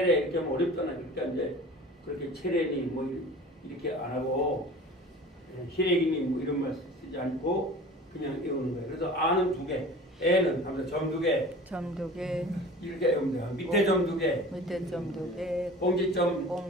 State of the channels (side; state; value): both; normal; correlation 0.40